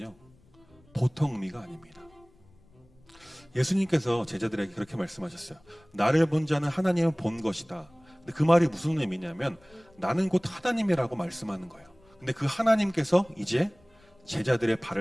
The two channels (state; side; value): noise; left; rumble, 30 dB below the sound